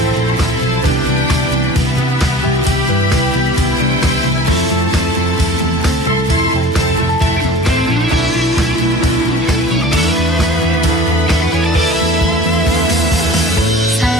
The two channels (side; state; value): both; normal; correlation 0.42